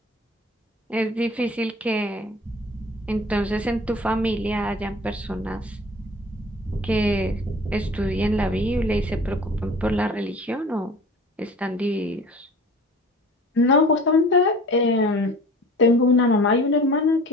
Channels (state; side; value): normal; both; correlation 0.44